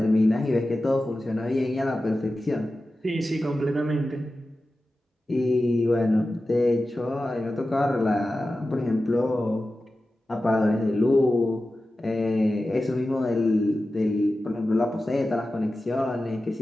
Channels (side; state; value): both; normal; correlation 0.94